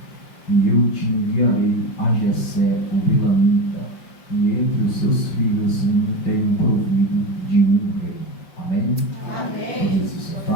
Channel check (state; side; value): late; right; 5.4 ms